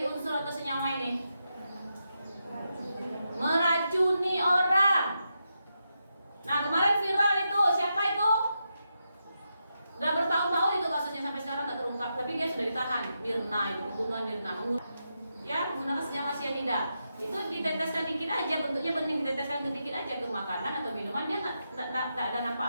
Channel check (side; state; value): both; inverted; correlation -0.86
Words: unsur atau senyawa ini? Meracuni orang. Nah, kemarin viral itu, siapa itu? Udah bertahun-tahun itu kasusnya, sampai sekarang nggak terungkap, tapi dia sudah ditahan. Mirna itu, pembunuhan Mirna, menggunakan senyawa cyanida. Itu diteteskan dikit aja, bentuknya bening, diteteskan dikit aja ke makanan atau minuman, dia nggak ada